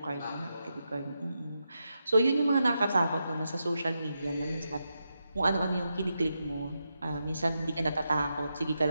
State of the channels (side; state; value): both; inverted; correlation -0.86